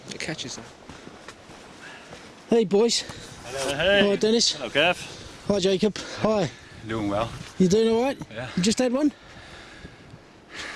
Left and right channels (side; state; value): both; identical; correlation 1.00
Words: It catches them. Hey, boys. Hello, hey. Hi, Dennis. Hello, Kev. Hi, Jacob. Hi. Doing well. You doing all right? Yeah. You just had one?